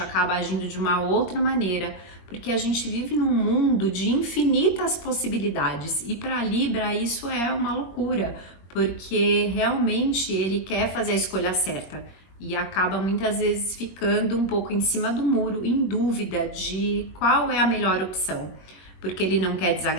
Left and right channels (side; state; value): right; late; 21 ms